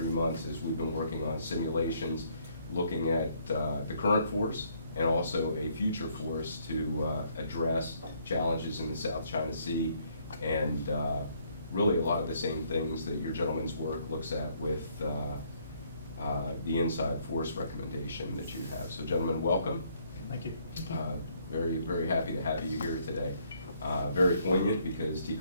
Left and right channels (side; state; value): both; inverted; correlation -0.67